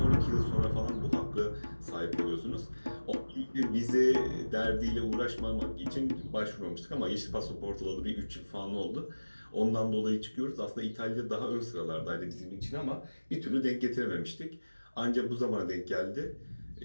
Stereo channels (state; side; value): inverted; both; correlation -1.00